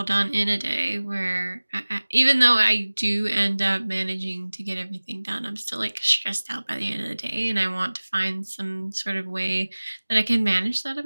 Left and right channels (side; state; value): both; inverted; correlation -1.00